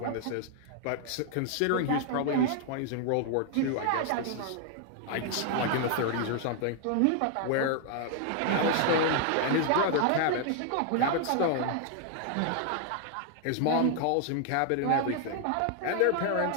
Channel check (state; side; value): different; both; correlation 0.00